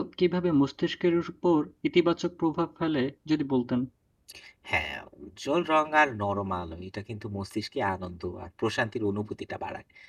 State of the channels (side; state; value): both; identical; correlation 1.00